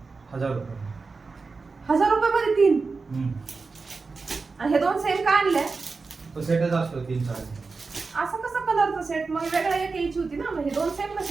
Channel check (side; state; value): left; quieter; 4.3 dB